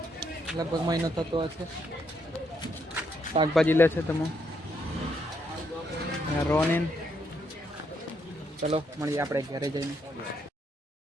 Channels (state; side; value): normal; both; correlation 0.76